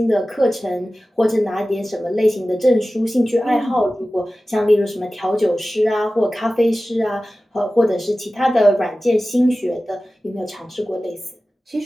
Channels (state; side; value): normal; both; correlation 0.96